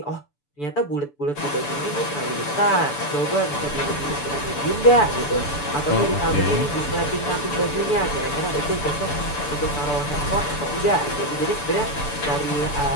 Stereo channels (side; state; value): right; late; 6.9 ms